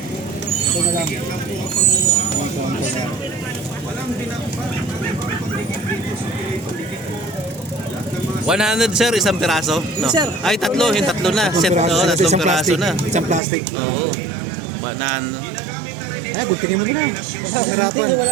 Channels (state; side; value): drops out; left; at 13.4 s